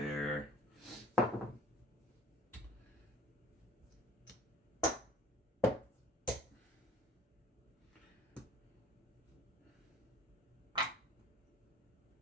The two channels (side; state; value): both; normal; correlation 0.48